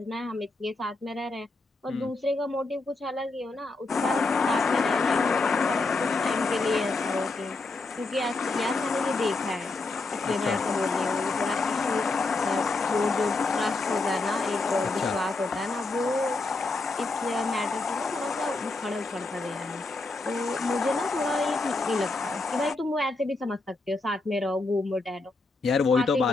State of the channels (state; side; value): quieter; right; 3.4 dB